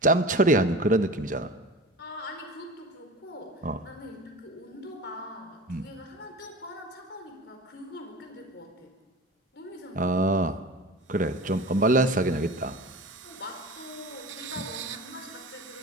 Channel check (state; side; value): normal; both; correlation 0.34